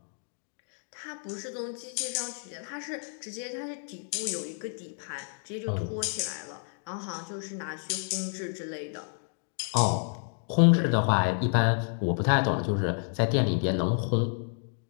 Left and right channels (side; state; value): right; silent; 58 dB below the other